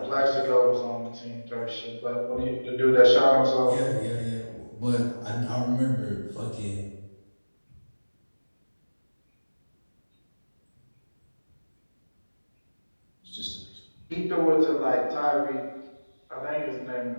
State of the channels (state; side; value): inverted; both; correlation -1.00